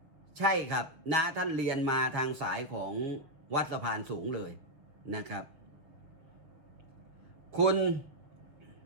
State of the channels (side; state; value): left; late; 6.9 ms